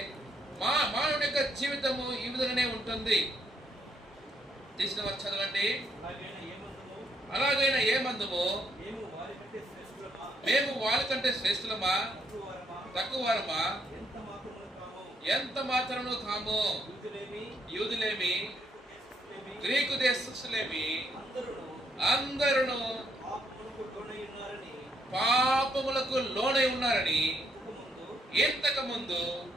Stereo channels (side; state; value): both; normal; correlation 0.74